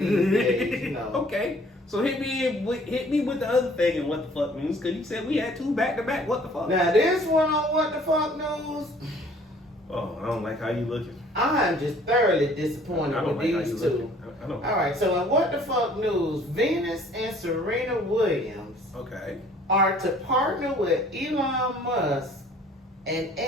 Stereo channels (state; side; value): normal; both; correlation 0.55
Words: days, Okay, so hit me with the other thing and what the fuck news, because you said we had 2 back-to-back. What the fuck? Now this one on what the fuck news. Oh, I don't like how you looking. I'm just thoroughly disappointed with these 2. I don't. All right, so in what the fuck news, Venus and Serena Williams are to partner with Elon Musk and